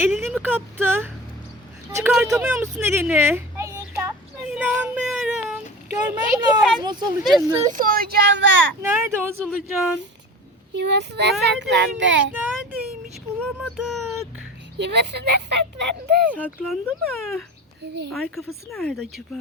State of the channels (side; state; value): both; normal; correlation 0.33